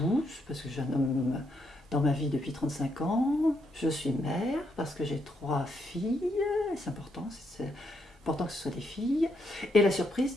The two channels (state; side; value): normal; both; correlation 0.77